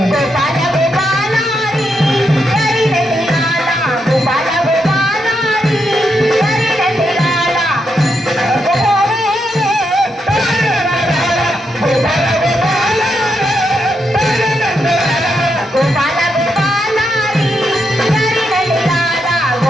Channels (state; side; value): normal; both; correlation 0.81